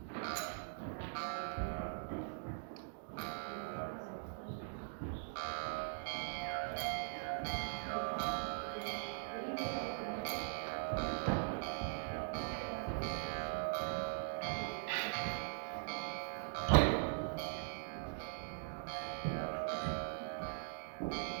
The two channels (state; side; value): silent; left; digital silence